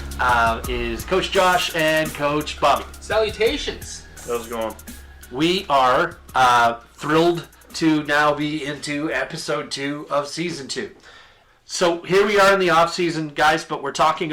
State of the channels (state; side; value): identical; both; correlation 1.00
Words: is Coach Josh and Coach Bobby. Salutations. How's it going? We are thrilled to now be into episode 2 of season 2. So here we are in the off season, guys, but we're talking